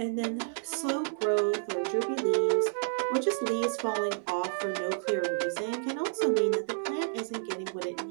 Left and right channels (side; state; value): left; silent; 56 dB below the other